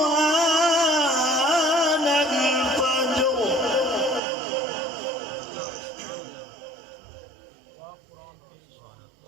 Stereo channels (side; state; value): left; drops out; at 4.2 s